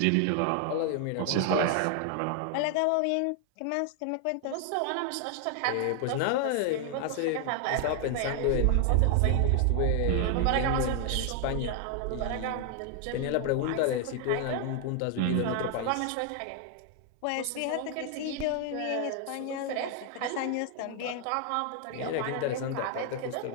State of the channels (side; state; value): both; different; correlation 0.00